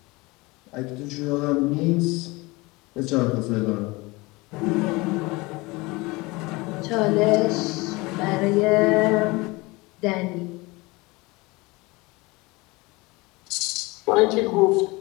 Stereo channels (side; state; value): right; quieter; 23.7 dB